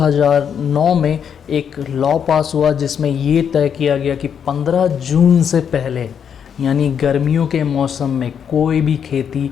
में एक लॉ पास हुआ जिसमें ये तय किया गया कि 15 जून से पहले यानी गर्मियों के मौसम में कोई भी खेती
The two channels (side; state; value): right; quieter; 7.8 dB